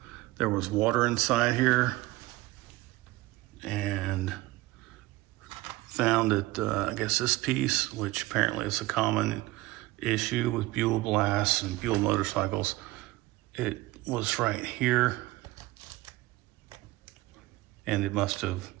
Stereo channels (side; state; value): left; quieter; 19.4 dB